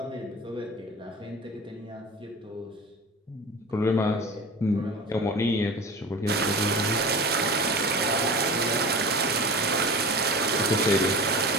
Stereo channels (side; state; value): both; normal; correlation 0.34